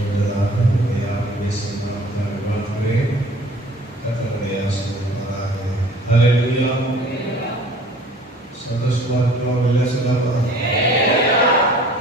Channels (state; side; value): normal; both; correlation 0.49